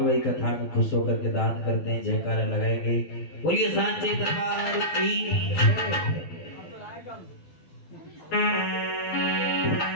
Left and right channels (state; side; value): late; right; 12 ms